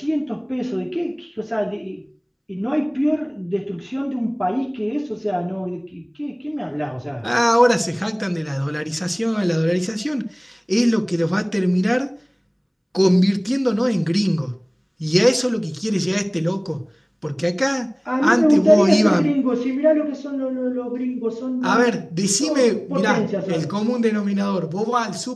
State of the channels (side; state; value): both; identical; correlation 1.00